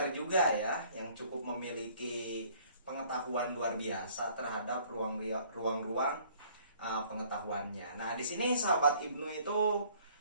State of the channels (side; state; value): both; inverted; correlation -0.57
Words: juga ya, yang cukup memiliki pengetahuan luar biasa terhadap ruang-ruang pengetahuannya. Nah, di sini sahabat Ibnu itu